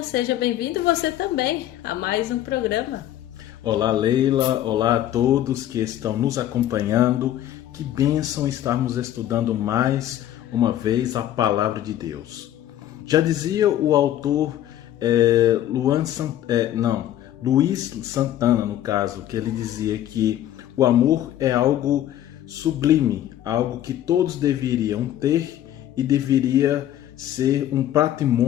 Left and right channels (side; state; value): right; quieter; 12.2 dB